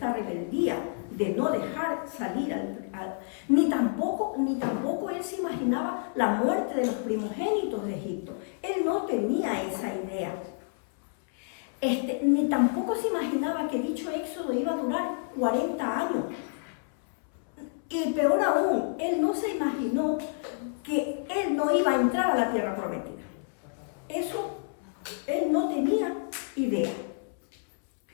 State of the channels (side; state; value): right; silent; 59 dB below the other